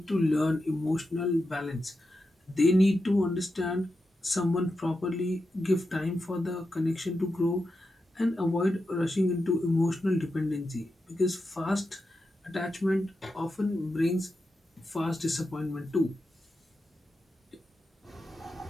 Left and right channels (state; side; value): normal; both; correlation 0.88